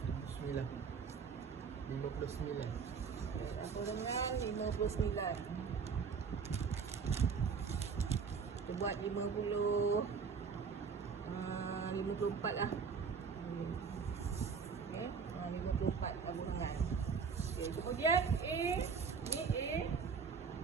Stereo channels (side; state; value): left; quieter; 5.8 dB